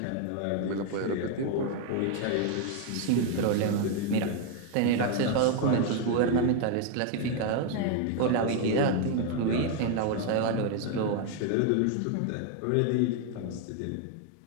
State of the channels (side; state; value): both; different; correlation 0.00